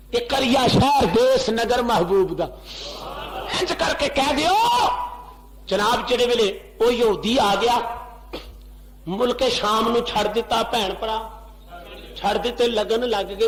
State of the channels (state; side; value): identical; both; correlation 1.00